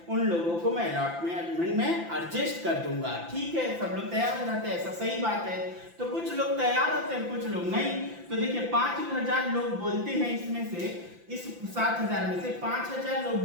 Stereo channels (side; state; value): left; late; 5.9 ms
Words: उन लोगों को मैं अलॉटमेंट में एडजस्ट कर दूंगा। ठीक है, सब लोग तैयार हो जाते हैं, ऐसा सही बात है। तो कुछ लोग तैयार होते हैं, कुछ लोग नहीं। तो देखिए 5,000 लोग बोलते हैं, इसमें से इस 7,000 में से 5,000 लोग